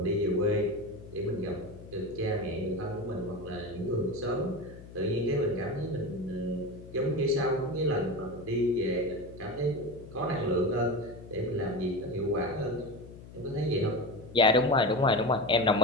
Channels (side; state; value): left; noise; hum, 16 dB below the sound